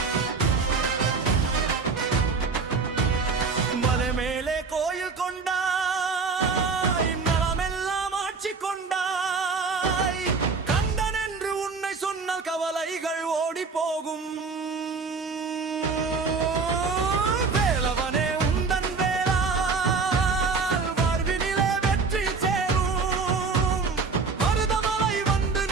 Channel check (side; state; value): left; quieter; 4.7 dB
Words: மலை மேலே கோயில் கொண்டாய் மரமெல்லாம் ஆட்சி கொண்டாய் கந்தன் என்று உன்னை சொன்னால் கவலைகள் ஓடி போகும் வேலவனே உந்தன் வேளால் வாழ்வினிலே வெற்றி சேரும் மருதமலை வந்து